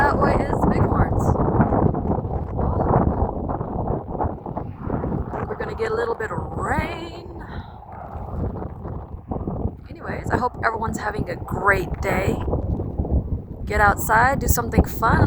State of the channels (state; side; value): identical; both; correlation 1.00